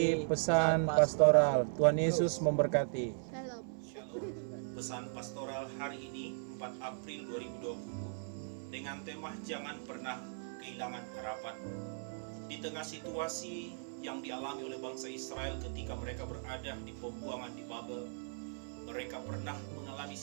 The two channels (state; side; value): silent; left; 53 dB below the other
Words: pesan pastoral. Tuhan Yesus memberkati. Shalom. Pesan pastoral hari ini 4 April 2020 dengan tema jangan pernah kehilangan harapan. Di tengah situasi yang dialami oleh bangsa Israel ketika mereka berada di pembuangan di Babel, mereka pernah mengalami